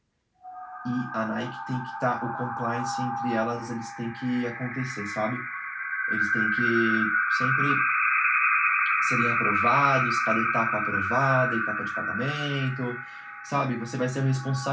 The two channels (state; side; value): identical; both; correlation 1.00